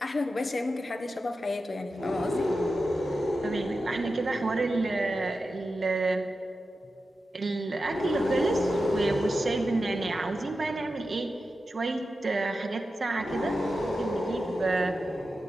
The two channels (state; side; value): normal; both; correlation 0.91